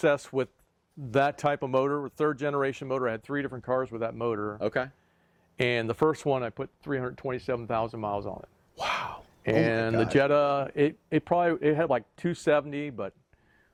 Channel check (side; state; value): both; identical; correlation 1.00